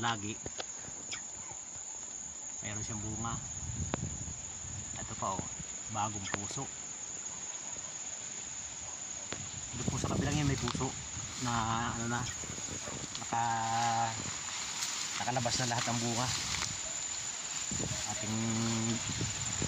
mayroon siyang bunga. Ito pa oh, bagong puso. Ito po sa kabilang yan may puso na ano na, nakalabas na lahat ng bunga. Ating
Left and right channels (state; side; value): identical; both; correlation 1.00